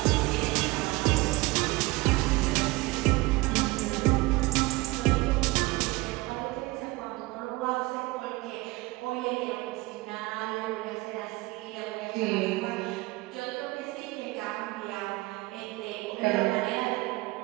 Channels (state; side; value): quieter; left; 21.6 dB